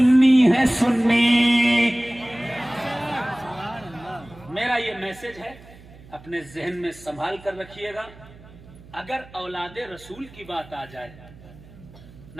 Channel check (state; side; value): noise; right; hum, 21 dB below the sound